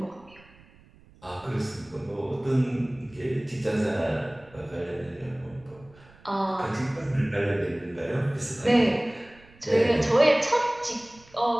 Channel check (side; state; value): right; noise; rumble, 26 dB below the sound